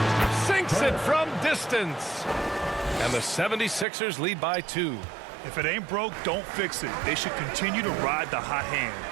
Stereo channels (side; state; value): left; drops out; at 3.9 s